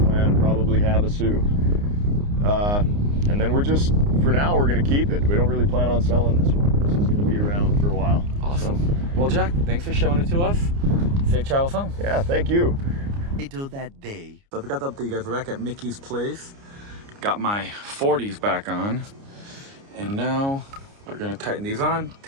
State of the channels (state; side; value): late; left; 29 ms